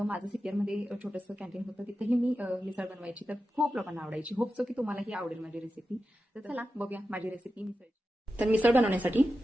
माझं सिपियरमध्ये छोटंसं कॅन्टीन होतं, तिथेही मी मिसळ बनवायची. तर खूप लोकांना आवडायची. होप सो की तुम्हालाही आवडेल माझी रेसिपी. तर चला बघूया माझी रेसिपी मिसळ. तर मिसळ बनवण्यासाठी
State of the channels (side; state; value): both; normal; correlation 0.91